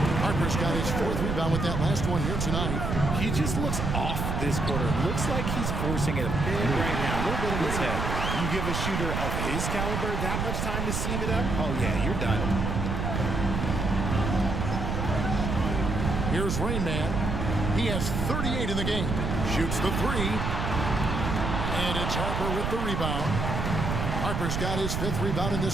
Harper's got his 4th rebound with that last one here tonight. He just looks off this quarter. Looks like he's forcing it a bit right now. A little bit in his head. You give a shooter of his caliber that much time to seam it up? Oh, yeah, you're done. Here's Rain Man. He has 38 in the game. Shoots the 3. And it's Harper with the rebound. Harper's got his 5th rebound in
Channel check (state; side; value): noise; right; rumble, 1 dB below the sound